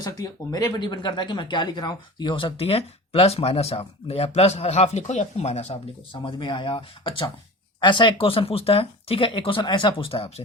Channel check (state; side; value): normal; both; correlation 0.35